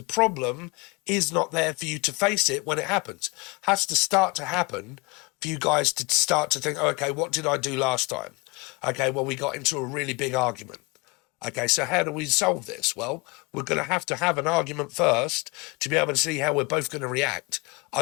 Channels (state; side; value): quieter; right; 26.1 dB